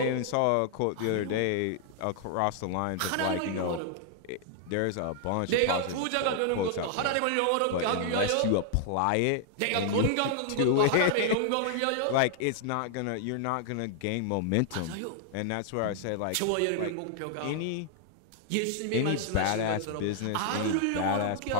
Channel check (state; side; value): different; both; correlation 0.00